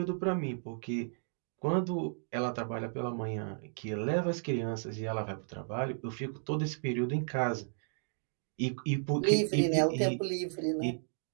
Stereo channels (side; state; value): left; silent; digital silence